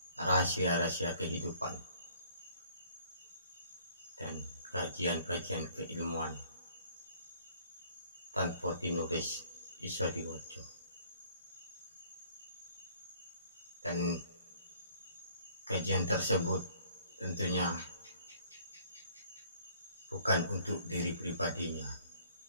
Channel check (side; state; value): both; inverted; correlation -0.58